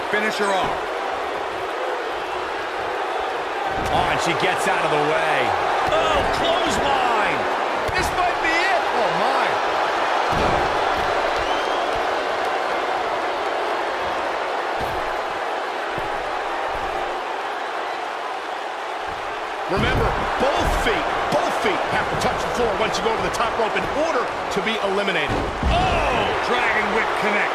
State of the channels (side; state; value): both; identical; correlation 1.00